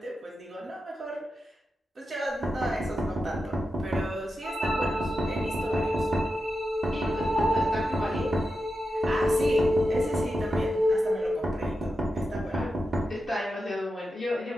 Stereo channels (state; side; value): normal; both; correlation 0.90